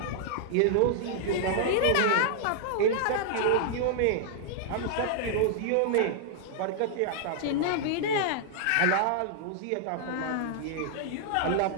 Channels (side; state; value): both; different; correlation -0.01